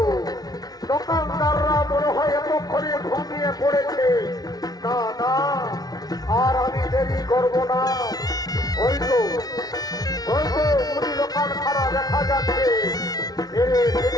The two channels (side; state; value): right; late; 0.19 ms